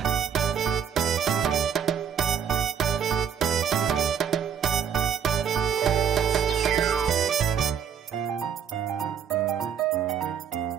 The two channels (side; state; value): left; quieter; 7.9 dB